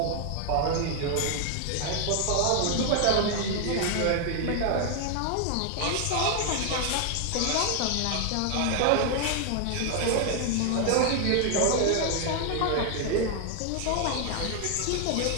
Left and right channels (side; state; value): both; different; correlation 0.01